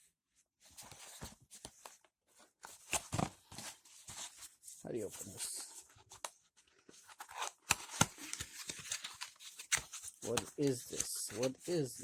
How do you open this? What is this? What is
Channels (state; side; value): identical; both; correlation 1.00